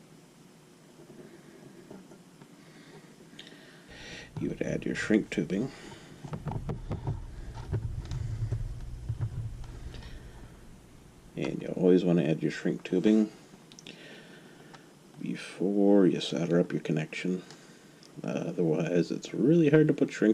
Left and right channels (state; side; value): identical; both; correlation 1.00